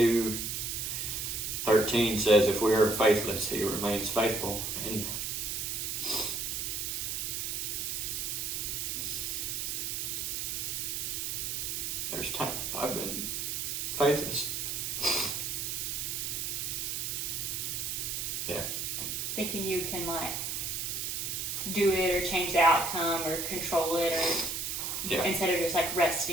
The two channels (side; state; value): right; noise; hiss, 2 dB below the sound